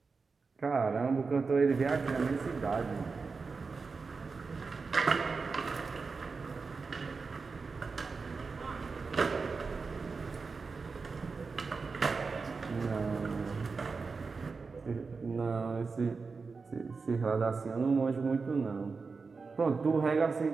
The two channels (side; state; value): left; quieter; 4.6 dB